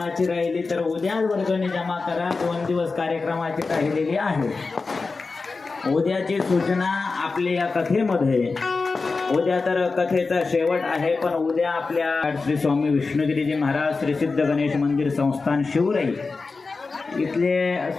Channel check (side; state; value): right; quieter; 4.1 dB